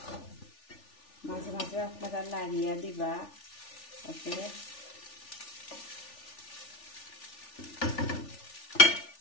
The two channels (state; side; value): late; right; 3.4 ms